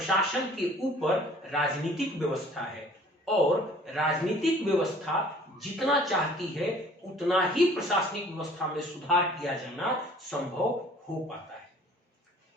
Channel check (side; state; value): both; normal; correlation 0.52